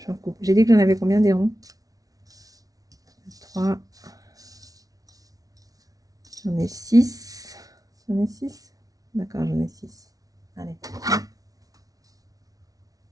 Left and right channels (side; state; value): left; late; 0.18 ms